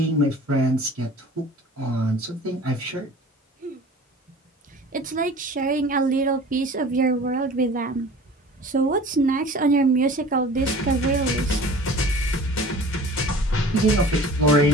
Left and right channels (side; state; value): both; normal; correlation 0.43